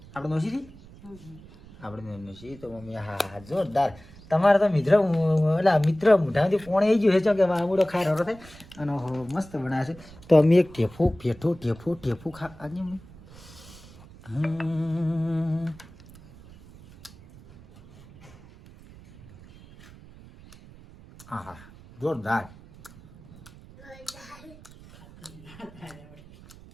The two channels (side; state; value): right; noise; rumble, 21 dB below the sound